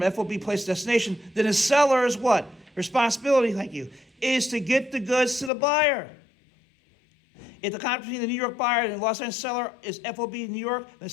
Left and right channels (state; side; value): drops out; right; at 5.5 s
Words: FOB place of destination, then the seller's what? Responsibility, thank you, is to get the goods to the buyer. If the contract between the New York buyer and the Los Angeles seller is FOB New York, the